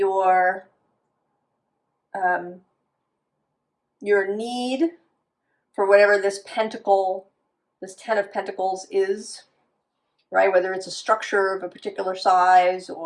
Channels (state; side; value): identical; both; correlation 1.00